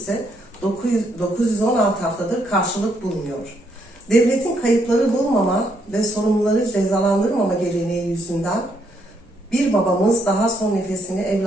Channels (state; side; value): normal; both; correlation 0.74